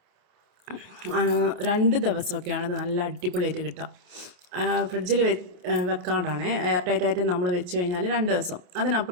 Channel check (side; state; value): left; late; 28 ms